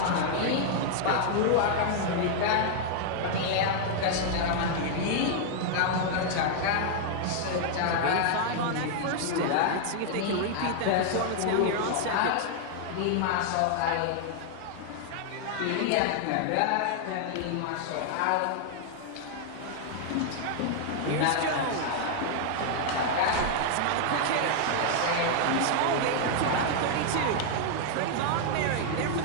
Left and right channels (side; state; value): both; different; correlation 0.00